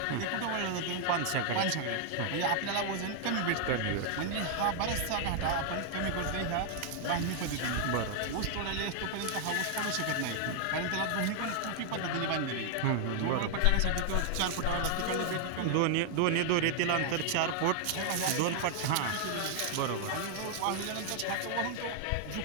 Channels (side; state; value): both; different; correlation 0.00